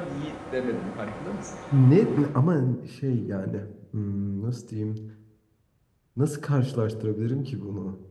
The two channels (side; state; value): both; identical; correlation 1.00